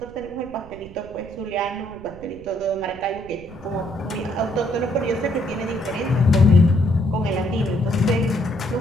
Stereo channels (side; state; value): right; noise; rumble, 19 dB below the sound